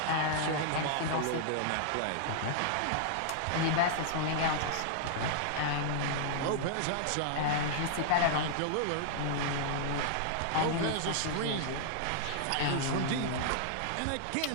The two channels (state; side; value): different; both; correlation -0.01